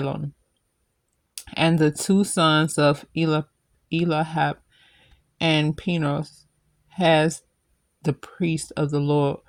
And the two sons of Elihab and Pinos, as the priest of the Lord,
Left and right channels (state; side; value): identical; both; correlation 1.00